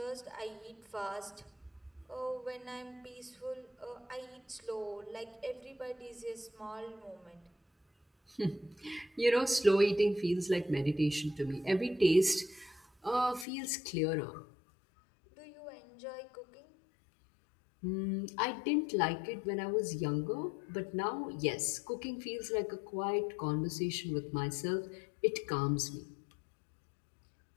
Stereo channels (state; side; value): drops out; right; at 13.5 s